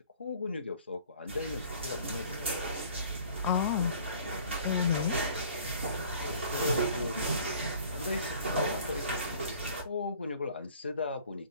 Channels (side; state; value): both; inverted; correlation -0.51